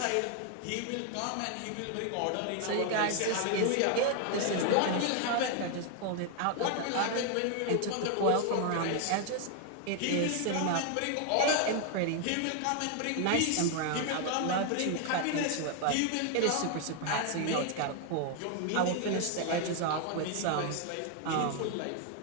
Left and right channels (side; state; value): both; different; correlation 0.00